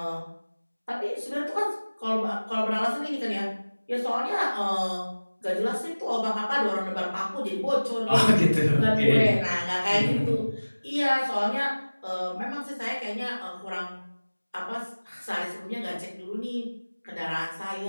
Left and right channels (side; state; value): both; inverted; correlation -1.00